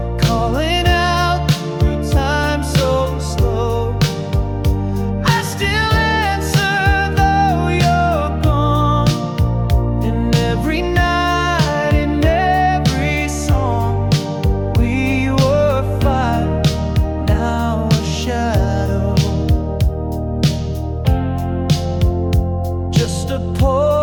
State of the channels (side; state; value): both; identical; correlation 1.00